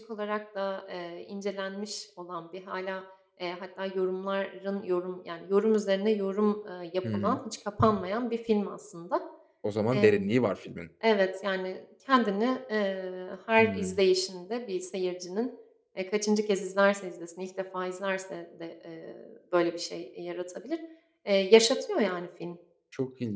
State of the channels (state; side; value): identical; both; correlation 1.00